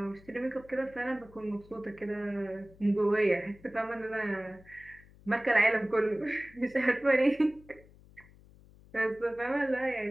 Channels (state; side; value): noise; left; hum, 24 dB below the sound